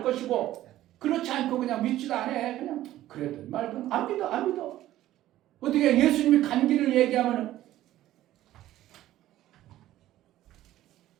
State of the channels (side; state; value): left; quieter; 14.1 dB